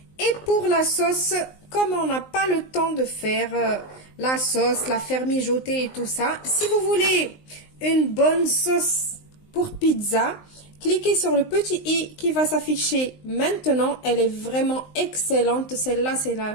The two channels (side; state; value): right; late; 19 ms